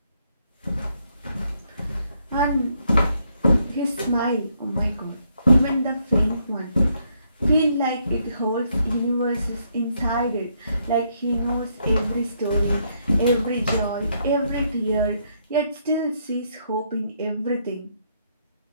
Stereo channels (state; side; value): inverted; both; correlation -0.74